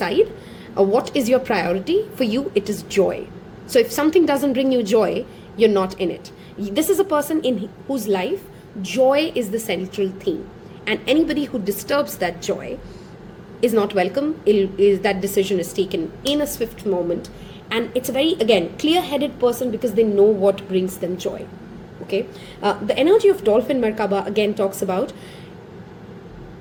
What is your priority? For you, it is joy. So if something doesn't bring you joy, you're not in it. This is a person in whose life joy is the central theme, and anybody who disturbs that joy is not welcome. That decision is taken in a swift moment, and it's a very, again, clear-headed person because they know what brings them joy. Okay, the energy of Dolphin Merkaba again talks about,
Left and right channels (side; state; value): both; identical; correlation 1.00